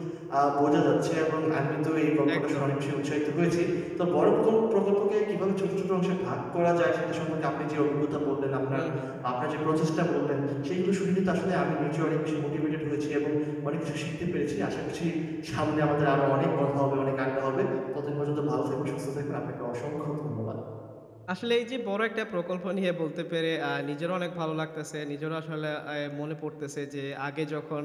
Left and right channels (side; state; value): both; identical; correlation 1.00